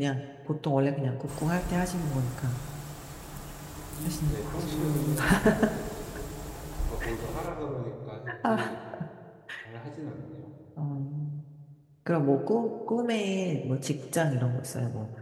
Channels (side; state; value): both; identical; correlation 1.00